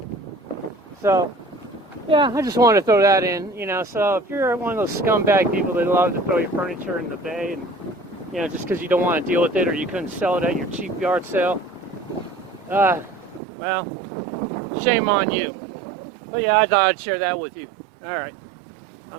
So, yeah, I just wanted to throw that in, you know. So if you're one of those scumbag people that love to throw your furniture in the bay, and you know, just because you don't want to deal with it or you couldn't sell it at your cheap yard sale, well, shame on you. But yeah, I thought I'd share that with you. All right,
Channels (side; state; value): left; drops out; at 13.4 s